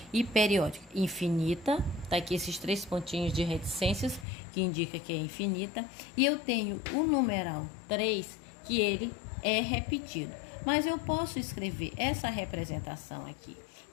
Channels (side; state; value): right; drops out; at 4.2 s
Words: e periódica? Infinita, tá aqui esses 3 pontinhos de reticências, que indica que é infinita. E eu tenho o numeral 3, que ele é repetido. Mas eu posso escrever essa representação aqui,